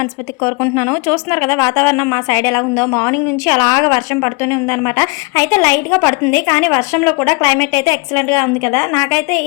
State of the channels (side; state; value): right; quieter; 29.5 dB